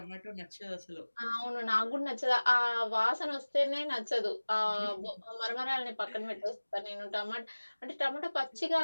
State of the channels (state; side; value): inverted; both; correlation -1.00